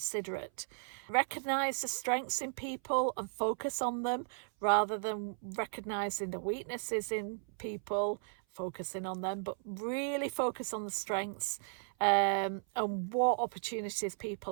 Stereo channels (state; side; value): silent; left; 54 dB below the other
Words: Recognize the strengths in people and focus on them rather than recognizing the weaknesses in people, focusing on them, but really focus on the strengths and what opportunities